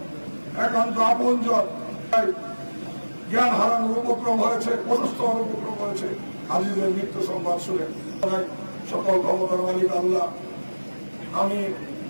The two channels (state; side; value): inverted; both; correlation -1.00